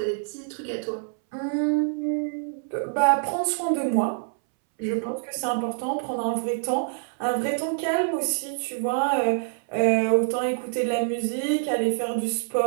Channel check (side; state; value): left; silent; 61 dB below the other